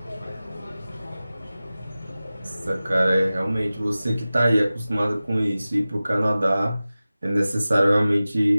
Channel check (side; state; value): both; inverted; correlation -0.96